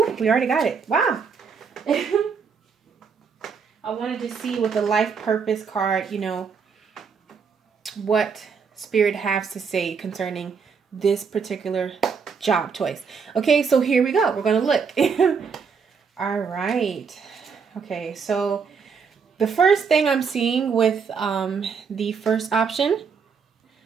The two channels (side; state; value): left; quieter; 5.9 dB